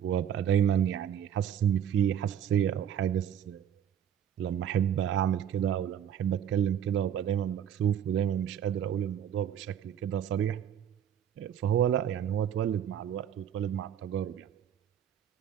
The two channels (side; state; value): left; quieter; 9.4 dB